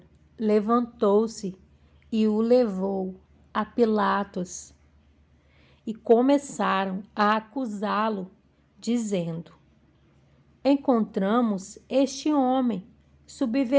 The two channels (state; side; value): identical; both; correlation 1.00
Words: levantou-se e o levou a Pilatos e começaram a acusá-lo, dizendo: Encontramos este homem